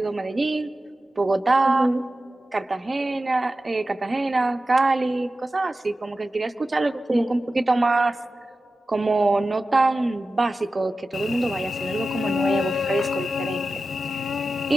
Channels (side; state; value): both; normal; correlation 0.94